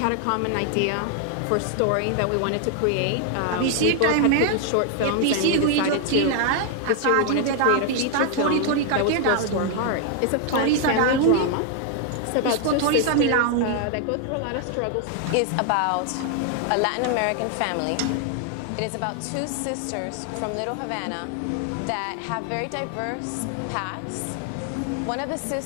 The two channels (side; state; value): both; different; correlation 0.00